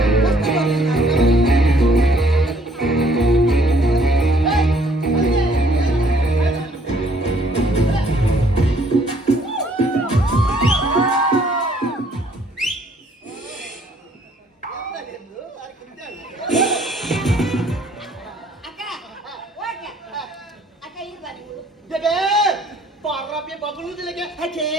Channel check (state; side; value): normal; both; correlation 0.62